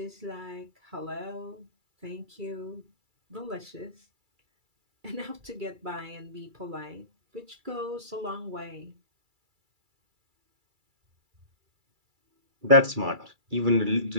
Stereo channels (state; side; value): late; left; 2.3 ms